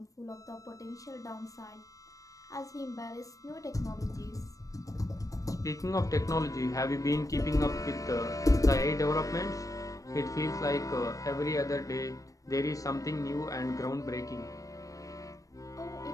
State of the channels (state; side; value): late; right; 0.16 ms